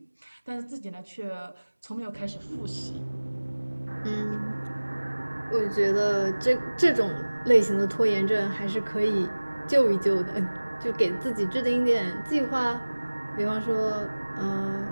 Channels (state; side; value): inverted; both; correlation -1.00